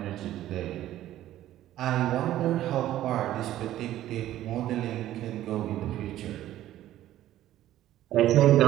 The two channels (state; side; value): quieter; left; 13.4 dB